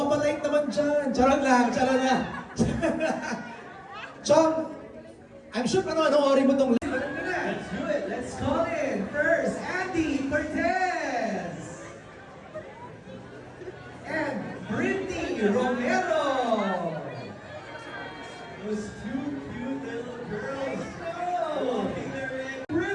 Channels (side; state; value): both; identical; correlation 1.00